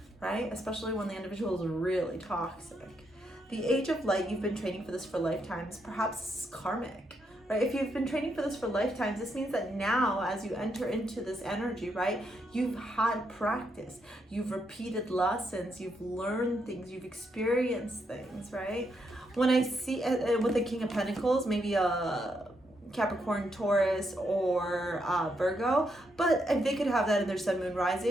right? Especially when the individual is really toxic. The Age of Light, you've been training for this for lifetimes. Perhaps it's karmic, right? If you've been training for this for lifetimes, this means that now as you enter into this energy, right, you've had practice, you've repeated lessons, you've learned things, you've experienced things, right? When I see with the King of Pentacles, maybe a Capricorn, Taurus, or Virgo, but if they could have that in their sun, moon,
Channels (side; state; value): both; normal; correlation 0.79